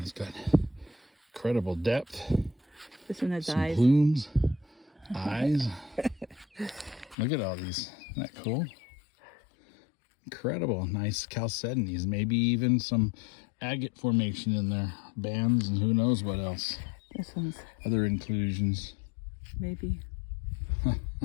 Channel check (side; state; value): right; drops out; at 7.2 s